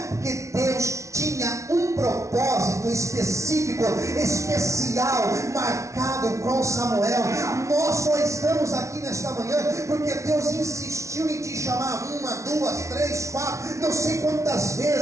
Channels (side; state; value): left; late; 0.14 ms